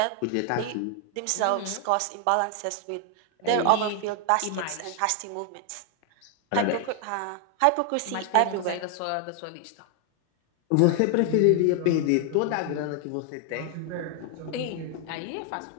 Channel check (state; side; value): different; both; correlation 0.00